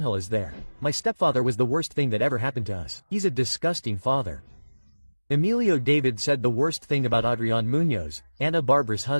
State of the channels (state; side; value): inverted; both; correlation -1.00